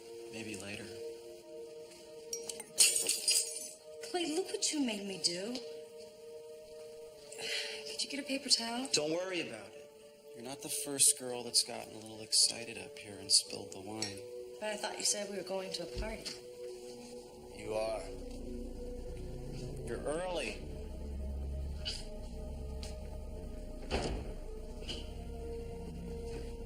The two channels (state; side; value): identical; both; correlation 1.00